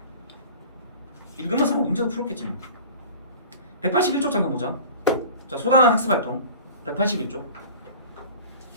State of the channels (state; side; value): inverted; both; correlation -0.41